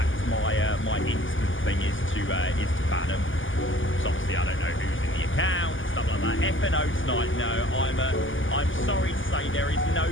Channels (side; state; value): right; late; 0.57 ms